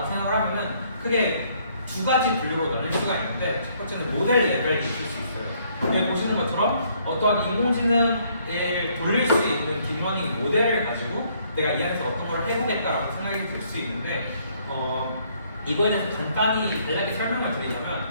생각을 하면은 크게 두 가지 분류로 나눌 수가 있는데 첫 번째는 모델 레벨이 있을 수 있어요. 여기 보시는 것처럼 어떠한 인공지능을 돌릴 수 있는 딥러닝 모델을 가지고 내가 이 안에서 어떤 걸 해보겠다라고 생각이 들 수 있는데 이거에 대해서 간단히 간략히 설명을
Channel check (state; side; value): inverted; both; correlation -0.67